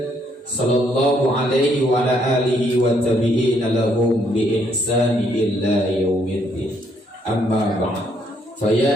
sallallahu alaihi wa ala alihi wa tabi'ina lahum bi ihsani illa yaumiddin. Amma ba'd. Fa ya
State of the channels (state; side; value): normal; both; correlation 0.70